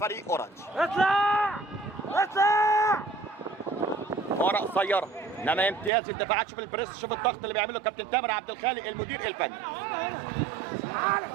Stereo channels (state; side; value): drops out; left; at 5.9 s